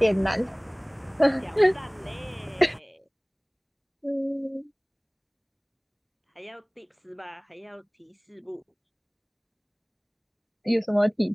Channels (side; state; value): both; identical; correlation 1.00